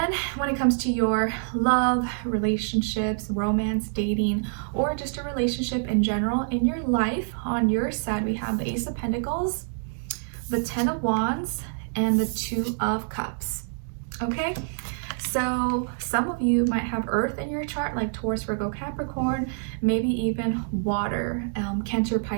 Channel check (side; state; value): left; silent; digital silence